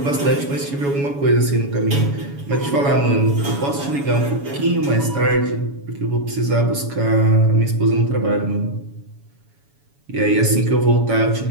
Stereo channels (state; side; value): late; left; 7.1 ms